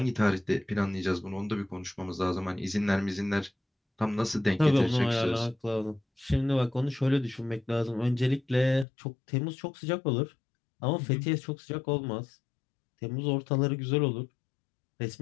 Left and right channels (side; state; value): right; drops out; at 8.8 s